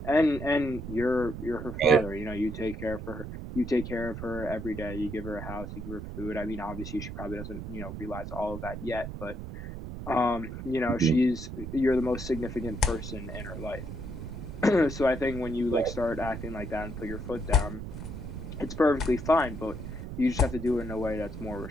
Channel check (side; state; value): right; noise; rumble, 8 dB below the sound